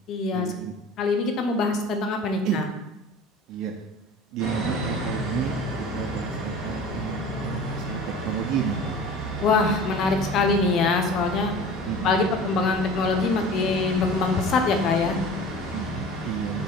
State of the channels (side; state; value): both; normal; correlation 0.40